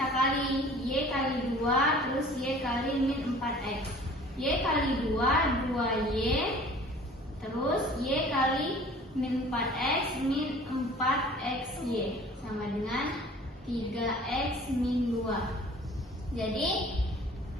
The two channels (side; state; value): both; normal; correlation 0.48